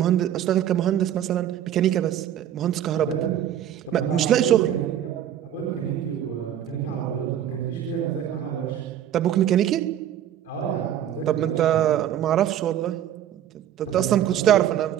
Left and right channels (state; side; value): quieter; left; 10.7 dB